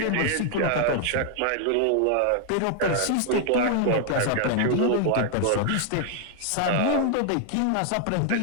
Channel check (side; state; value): both; different; correlation 0.00